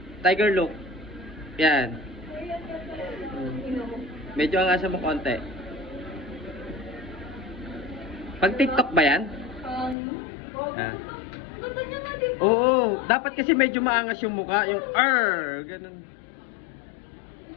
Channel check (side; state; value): right; drops out; at 10.0 s